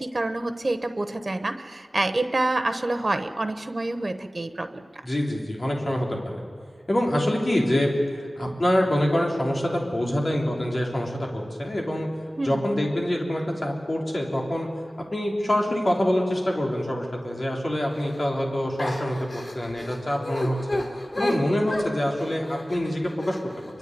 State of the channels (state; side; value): normal; both; correlation 0.97